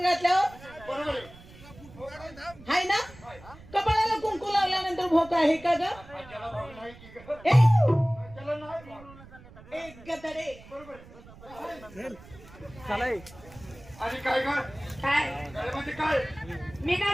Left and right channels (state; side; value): noise; right; rumble, 20 dB below the sound